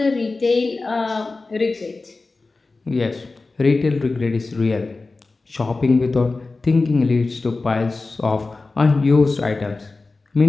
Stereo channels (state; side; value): quieter; right; 3.6 dB